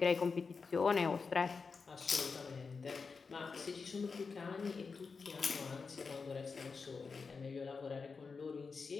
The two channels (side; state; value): right; quieter; 4.9 dB